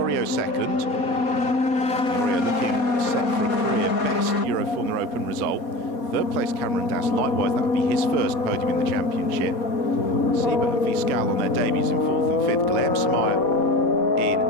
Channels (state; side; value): late; right; 4.2 ms